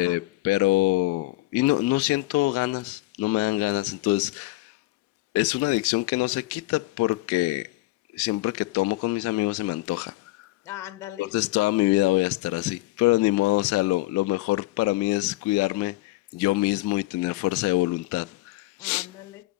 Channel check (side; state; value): right; quieter; 19.3 dB